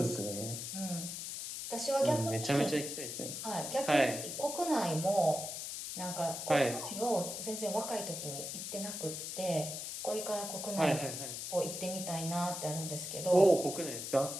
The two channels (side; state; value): left; noise; hiss, 6 dB below the sound